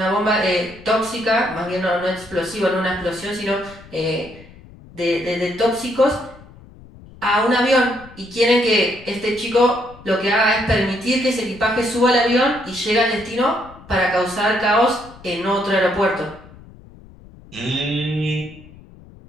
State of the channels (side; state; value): left; noise; rumble, 21 dB below the sound